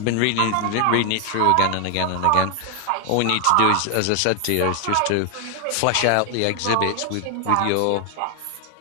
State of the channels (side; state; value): both; different; correlation 0.01